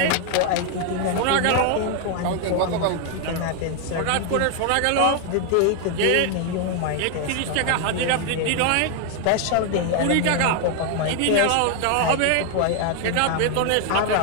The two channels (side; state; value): both; different; correlation 0.00